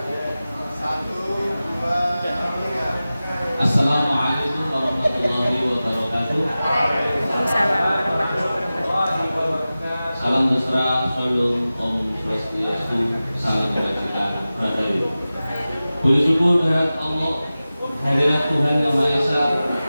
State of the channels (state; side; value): inverted; both; correlation -0.96